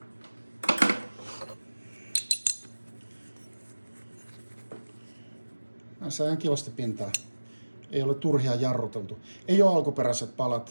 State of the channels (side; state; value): both; inverted; correlation -1.00